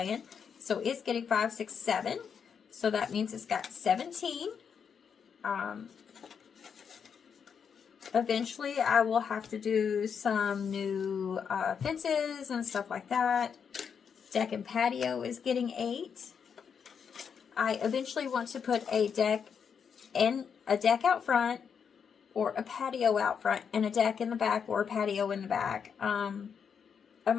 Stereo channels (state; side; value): quieter; right; 6.9 dB